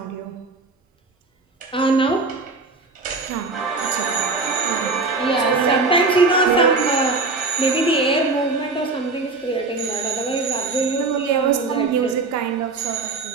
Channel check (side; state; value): left; quieter; 3.8 dB